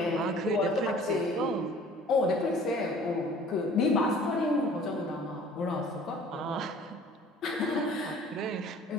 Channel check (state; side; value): normal; both; correlation 0.50